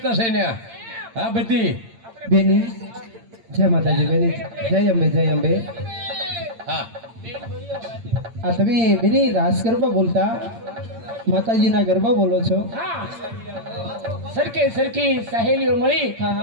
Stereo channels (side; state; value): left; late; 8.8 ms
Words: છે ને. હા બધી બેની જય માતાજી. બેની જય અંબે, જય અંબે. હા આ તમે બેની રાસ ગરબા બોલતા માતાજીના ગરબા બોલો છો? હા, સરખી સહેલીઓ મળી હા,